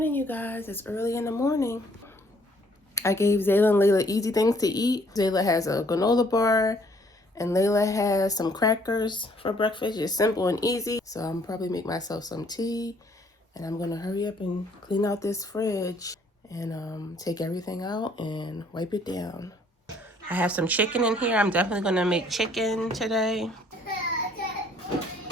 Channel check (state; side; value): normal; both; correlation 0.62